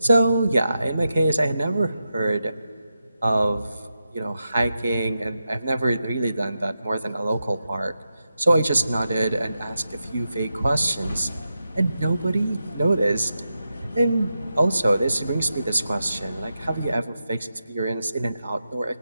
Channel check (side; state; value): both; inverted; correlation -0.89